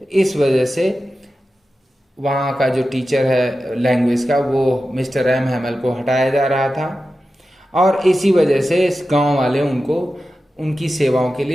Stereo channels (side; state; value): both; normal; correlation 0.93